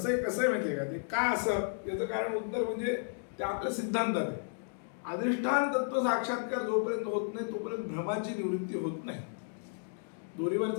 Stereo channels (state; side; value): silent; right; digital silence